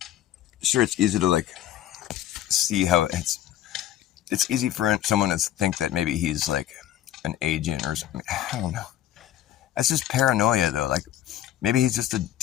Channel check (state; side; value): quieter; right; 12.2 dB